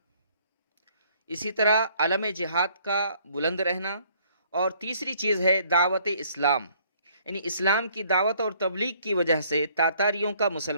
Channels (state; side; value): inverted; both; correlation -0.62